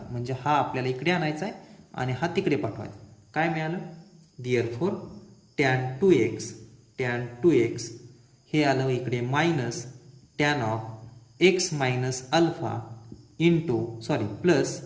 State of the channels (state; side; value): identical; both; correlation 1.00